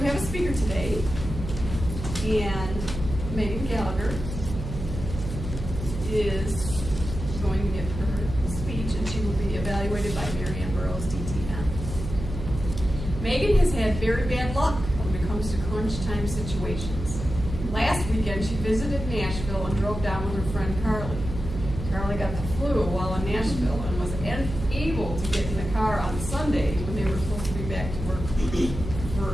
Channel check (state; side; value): noise; right; hum, 7 dB below the sound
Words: have a speaker today, and Megan Gallagher is going to give her speech, and she will be evaluated by Mary Ann Burroughs, DTN. Megan has had very bad luck when it comes to crunch time situations. Last weekend, she visited Nashville and drove down with her friend Carly. Carly got the flu while in Nashville and was unable to get in the car on Sunday when they were supposed to be back to work